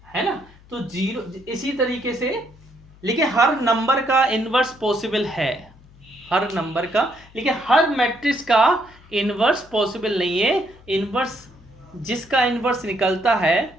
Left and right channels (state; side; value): noise; left; hum, 25 dB below the sound